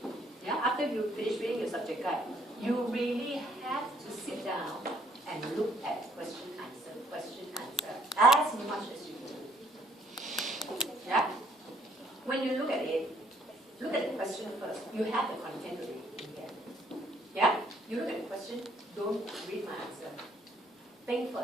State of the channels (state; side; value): normal; both; correlation 0.65